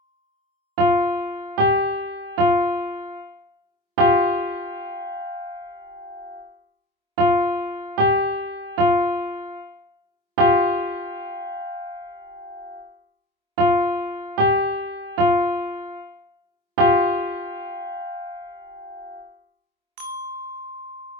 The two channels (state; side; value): late; left; 26 ms